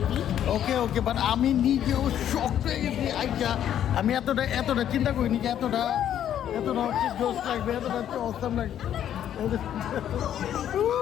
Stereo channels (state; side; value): quieter; right; 10.4 dB